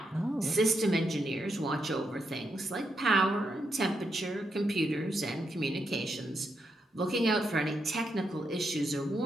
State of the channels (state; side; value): normal; both; correlation 0.82